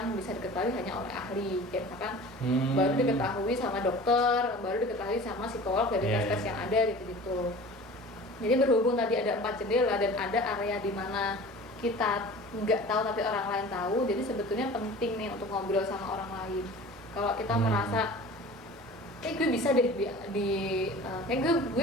bisa diketahui hanya oleh ahli, kayak misalkan baru diketahui sama dokter, baru diketahui sama psikolog dari tes-tes yang ada gitu-gitu. Jadi berhubung tadi ada 4 jendela dan ada area di mana kita nggak tahu tapi orang lain tahu, jadi sebetulnya penting nih untuk ngobrol sama orang lain. Kalau kita merasa gue bisa deh kayak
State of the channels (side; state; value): both; normal; correlation 0.40